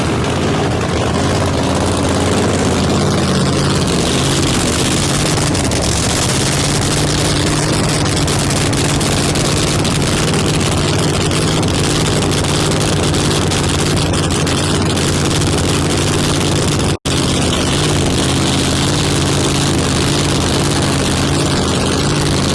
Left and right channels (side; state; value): both; identical; correlation 1.00